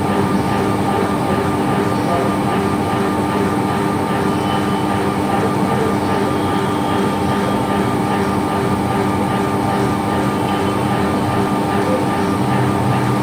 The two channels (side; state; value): both; identical; correlation 1.00